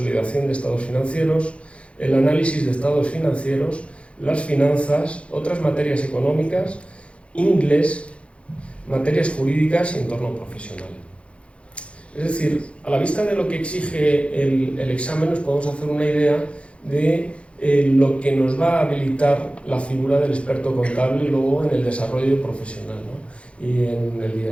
de estados financieros, el análisis de estados financieros, las finanzas, otras materias económicas, inglés, materias jurídicas y entorno profesional. Es decir, a la vista de lo que exige el examen nos podemos hacer una idea de lo que nos va a habilitar la figura del experto contable luego en el desarrollo profesional, ¿no? Y en el día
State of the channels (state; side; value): late; right; 0.061 ms